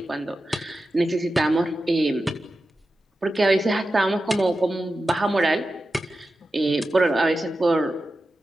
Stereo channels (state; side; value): normal; both; correlation 0.92